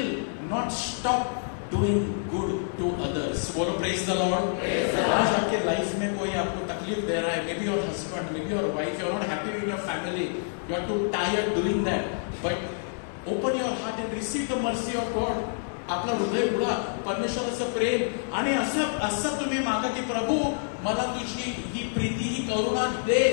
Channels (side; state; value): right; silent; digital silence